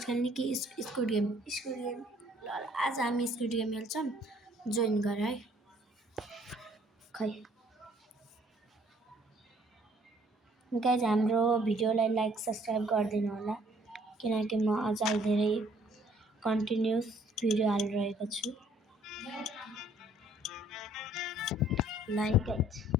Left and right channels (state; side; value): normal; both; correlation 0.61